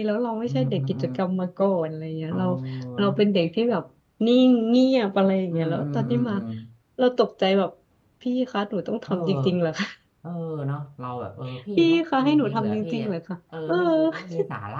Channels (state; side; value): identical; both; correlation 1.00